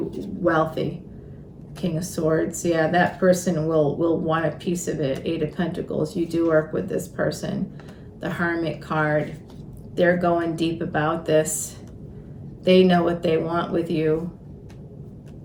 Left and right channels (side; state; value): both; identical; correlation 1.00